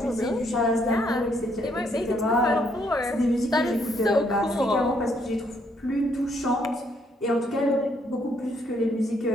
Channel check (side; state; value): both; normal; correlation 0.71